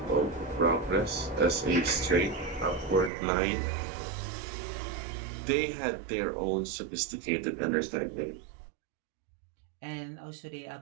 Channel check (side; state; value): left; drops out; at 3.1 s